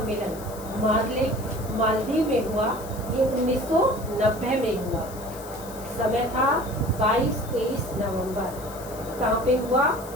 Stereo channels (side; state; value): left; noise; hiss, 17 dB below the sound